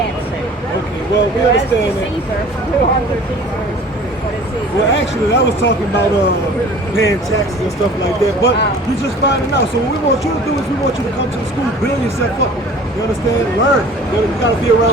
Okay, well, we understand that. Well, actually, I was talking about paying taxes and stuff like that, but you're just finding out. So what we want you to do is we want you to come to the school, build yourself up. You understand? Learn. You got to be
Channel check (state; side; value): normal; both; correlation 0.46